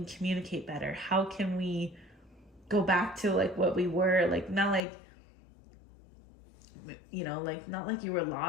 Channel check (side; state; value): right; drops out; at 4.8 s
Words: communicate better? How can we go back to like what we were, like not like, like not like you were